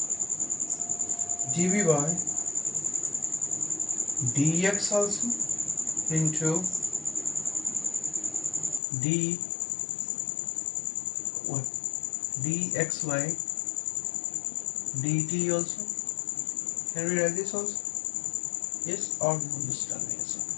dv by dx also into d, what, dx by dt also. Can we write this also? Yes or no? Just tell me yes.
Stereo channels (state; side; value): drops out; right; at 8.8 s